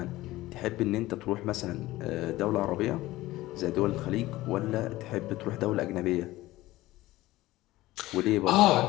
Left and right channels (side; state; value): right; quieter; 17.4 dB